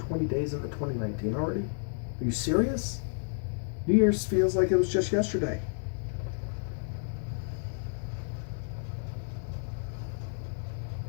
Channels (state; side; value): silent; right; digital silence